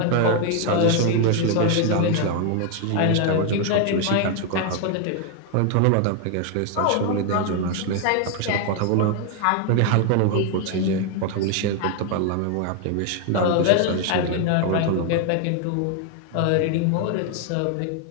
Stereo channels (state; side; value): different; both; correlation 0.00